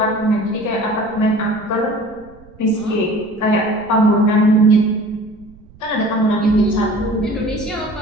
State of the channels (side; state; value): right; noise; rumble, 25 dB below the sound